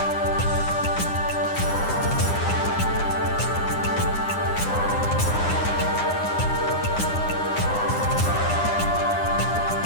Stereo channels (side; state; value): right; late; 9.8 ms